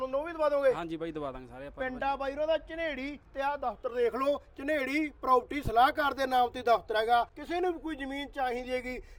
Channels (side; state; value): both; identical; correlation 1.00